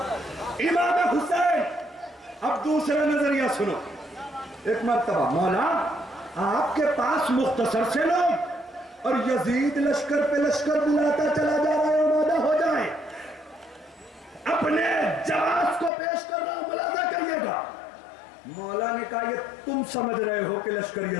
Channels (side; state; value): right; drops out; at 15.9 s